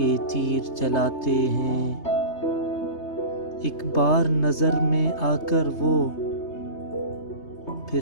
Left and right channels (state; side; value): late; right; 3.3 ms